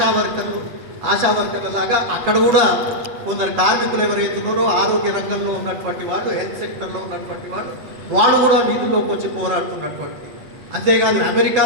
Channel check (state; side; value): late; left; 7.9 ms